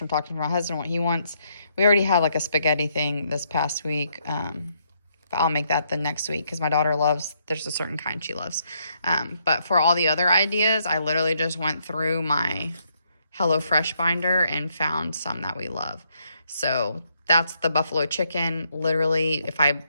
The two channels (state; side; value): inverted; both; correlation -0.74